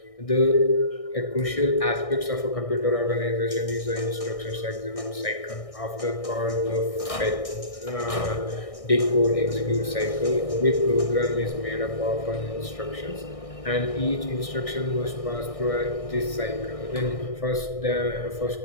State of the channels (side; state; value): right; late; 1.6 ms